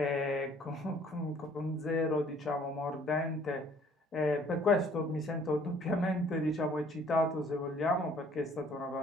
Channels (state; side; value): normal; both; correlation 0.58